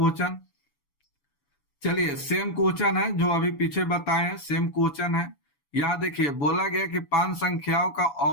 चलिए सेम क्वेश्चन है जो अभी पीछे बताए हैं, सेम क्वेश्चन है। यहाँ देखिए बोला गया कि 5 संख्याओं का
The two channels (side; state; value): right; late; 7.0 ms